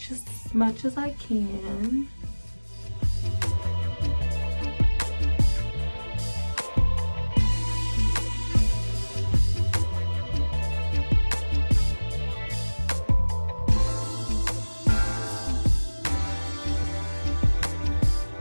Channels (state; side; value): inverted; both; correlation -1.00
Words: as much as I can.